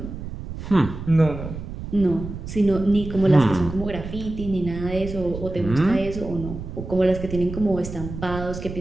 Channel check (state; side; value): noise; right; rumble, 9 dB below the sound